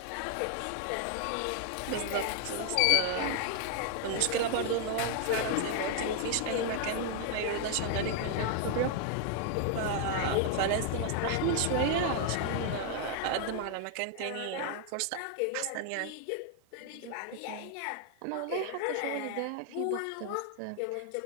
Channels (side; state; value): both; different; correlation 0.00